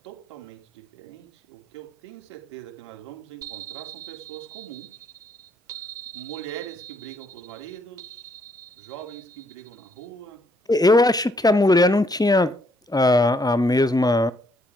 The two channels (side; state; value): both; normal; correlation 0.70